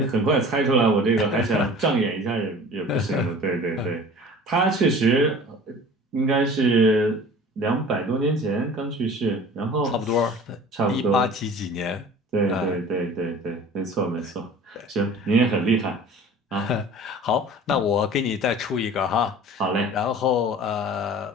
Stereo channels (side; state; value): both; normal; correlation 0.43